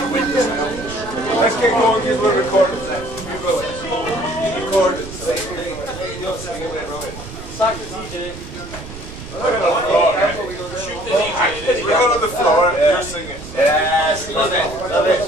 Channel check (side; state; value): right; noise; rumble, 13 dB below the sound